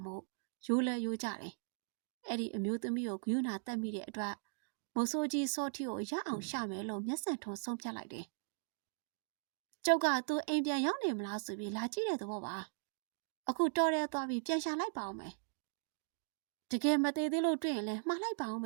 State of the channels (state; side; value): silent; left; digital silence